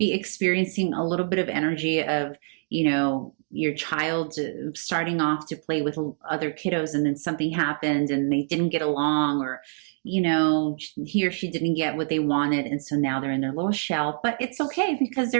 experiencing a little bit of energy of, your child starting off to play with other kiddos, and then something happened and they didn't get along, or he or she didn't get what they wanted, and so now they're in their little shell. But it's okay, because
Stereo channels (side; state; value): left; silent; digital silence